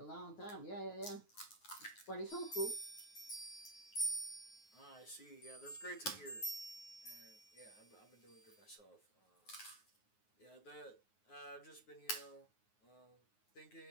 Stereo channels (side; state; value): right; late; 9.5 ms